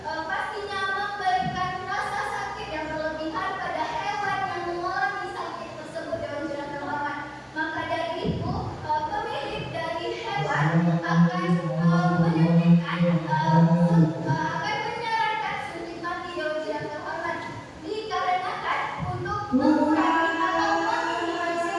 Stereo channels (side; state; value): both; identical; correlation 1.00